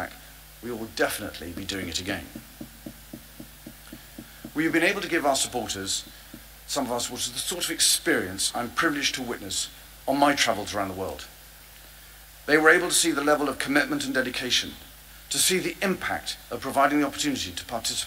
we will definitely be doing it again. We have been able to give our supporters, some of our supporters, the sort of experience I'm privileged to witness on my travels around the world. They were able to see the level of commitment and dedication, to see the impact of providing the opportunity to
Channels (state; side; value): identical; both; correlation 1.00